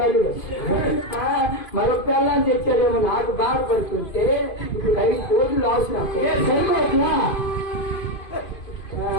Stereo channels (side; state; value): right; late; 2.5 ms